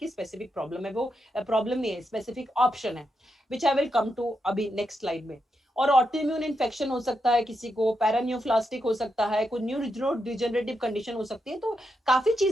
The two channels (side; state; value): both; normal; correlation 0.84